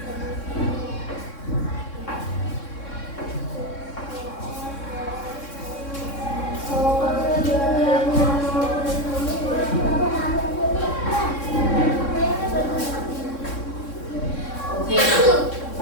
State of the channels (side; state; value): right; late; 3.6 ms